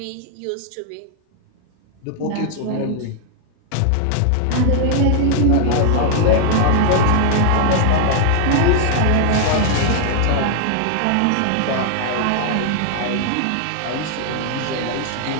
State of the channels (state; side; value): different; both; correlation 0.00